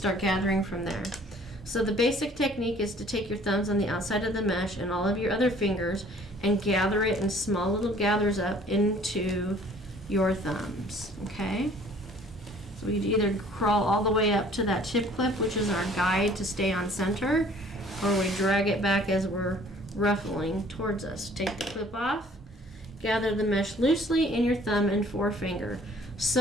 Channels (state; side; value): normal; both; correlation 0.55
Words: gathering from there. So the basic technique is to take your thumbs on the outside of the mesh and all of your other fingers and gather it in small little gathers up into your thumbs, okay? So we either crawl all the way up to that chip clip, which is our guide to stay on center, or we drag it back as we're ruffling towards us. Take the clip off, gather the mesh loosely in your thumb and forefinger,